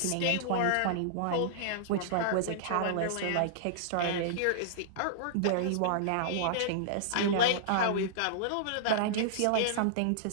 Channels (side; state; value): both; different; correlation -0.02